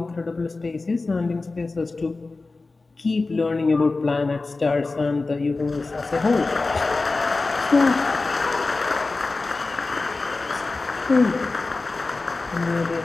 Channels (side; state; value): right; quieter; 3.6 dB